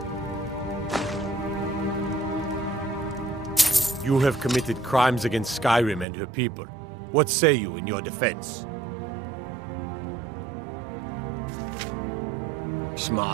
You have committed crimes against Skyrim and her people. What say you in your defense?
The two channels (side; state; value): left; drops out; at 6.1 s